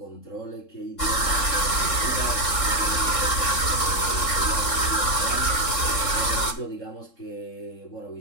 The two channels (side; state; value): right; late; 3.7 ms